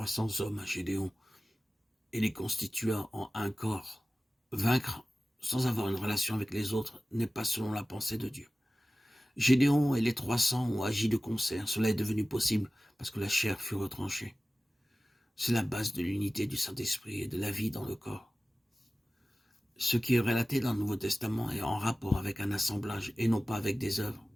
hommes à Gédéon et les constitua en un corps. Vaincre sans avoir une relation avec les autres n'est pas selon la pensée de Dieu. Gédéon et les 300 ont agi de concert. Cela est devenu possible parce que la chair fut retranchée. C'est la base de l'unité du Saint-Esprit et de la vie dans le corps. Ce qui est relaté dans le Nouveau Testament est en rapport avec un assemblage et non pas avec des œuvres.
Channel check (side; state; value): both; normal; correlation 0.96